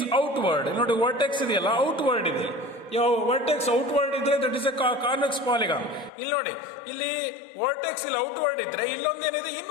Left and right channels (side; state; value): right; drops out; at 6.1 s